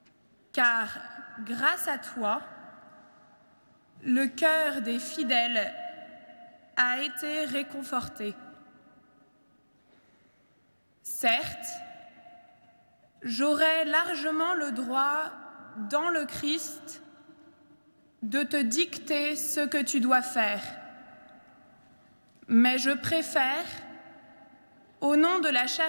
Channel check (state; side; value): inverted; both; correlation -1.00